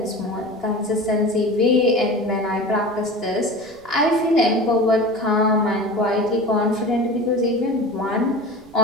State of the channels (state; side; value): noise; right; rumble, 27 dB below the sound